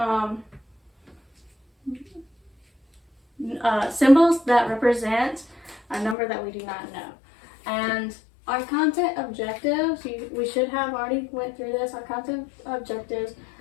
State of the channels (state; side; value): drops out; right; at 6.2 s